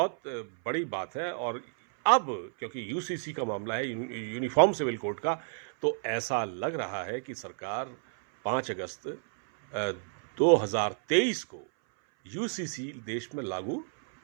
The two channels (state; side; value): silent; left; 58 dB below the other